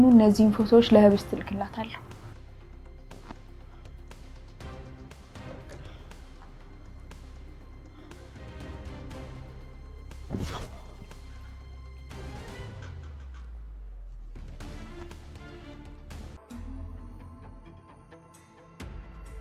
እነዚህን ፎቶዎች ለህብስት ልክላታለሁ።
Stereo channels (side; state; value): both; identical; correlation 1.00